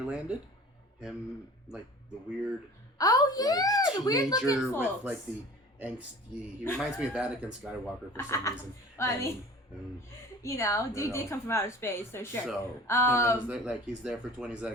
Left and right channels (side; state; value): both; normal; correlation 0.43